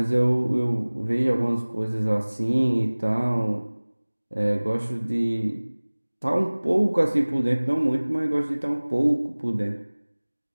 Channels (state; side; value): inverted; both; correlation -1.00